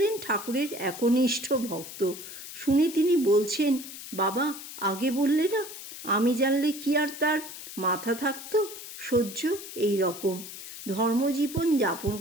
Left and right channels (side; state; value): left; noise; hiss, 12 dB below the sound